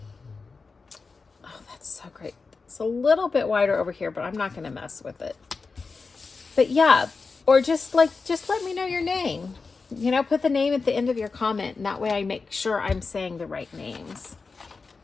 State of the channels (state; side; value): quieter; right; 4.4 dB